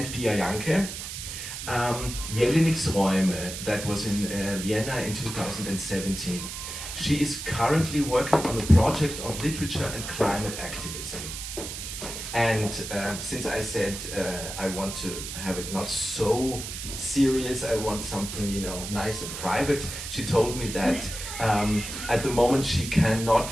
Pia Janke, Jelinek's Räume, that was in Vienna in 2017. She is currently working on a project on literature and climate activism. And since I said I want to have it not so serious, I want something, you know, nice and private, she told me that at the moment she cannot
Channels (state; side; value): noise; right; hiss, 8 dB below the sound